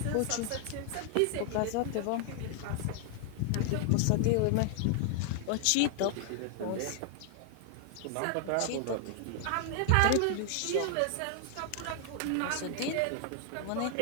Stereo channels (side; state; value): both; different; correlation 0.00